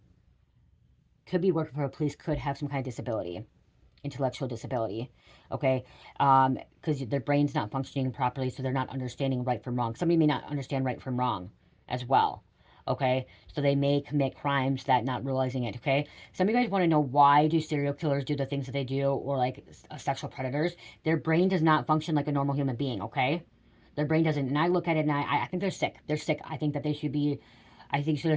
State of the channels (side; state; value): both; identical; correlation 1.00